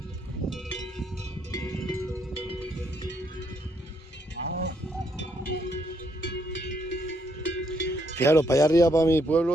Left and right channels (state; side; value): normal; both; correlation 0.73